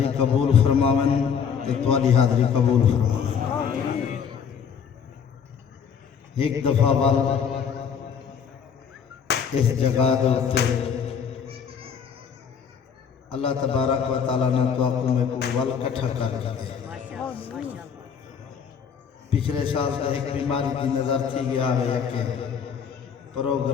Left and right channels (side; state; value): right; quieter; 7.0 dB